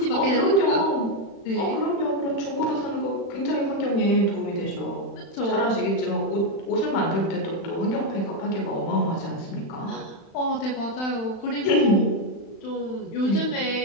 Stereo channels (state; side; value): late; right; 36 ms